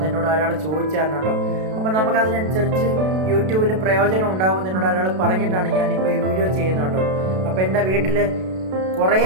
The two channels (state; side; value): late; left; 32 ms